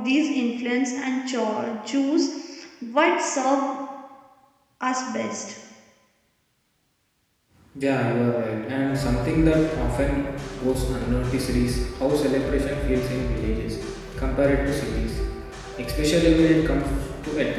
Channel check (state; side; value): identical; both; correlation 1.00